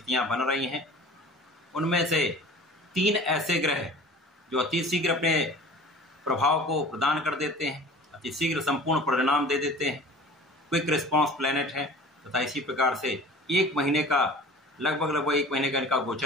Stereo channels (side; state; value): both; normal; correlation 0.43